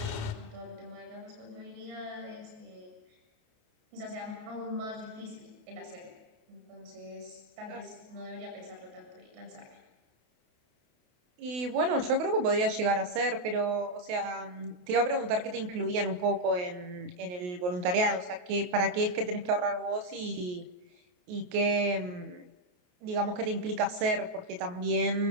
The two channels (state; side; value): late; left; 28 ms